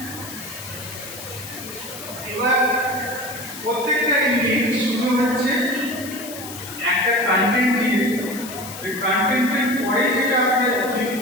এবার প্রত্যেকটা ইউনিট শুরু হচ্ছে একটা কন্টেন্ট দিয়ে, ওই কন্টেন্টের পরে যেটা আপনি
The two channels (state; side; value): noise; left; hiss, 12 dB below the sound